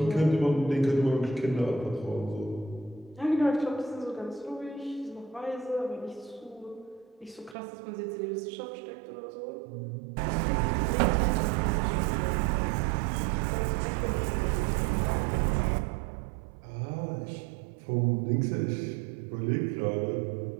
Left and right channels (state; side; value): drops out; left; at 7.6 s